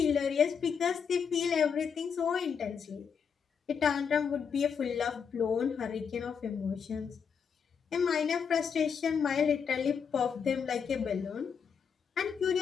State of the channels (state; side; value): quieter; right; 6.7 dB